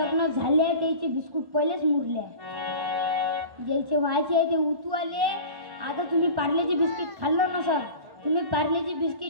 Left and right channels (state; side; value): late; left; 1.1 ms